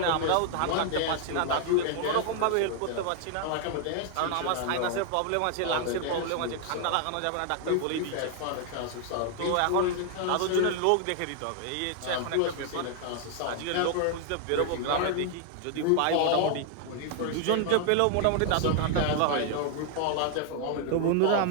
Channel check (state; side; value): different; both; correlation 0.00